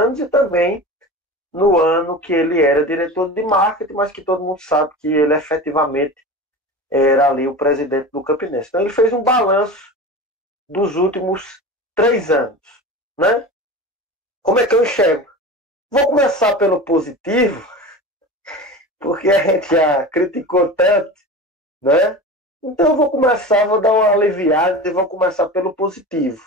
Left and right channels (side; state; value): both; normal; correlation 0.31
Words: e também no ano que ele era diretor de marketing, mas que todo mundo sabe que ele efetivamente era ali o presidente do Campinense. Então ele fez um balanço dos últimos 3 anos, né? Como é que eu enxergo? Vou começar pelo positivo, porque a gente já criticou tanto, né? Então eu vou dar uma aliviada e vou começar pelo positivo.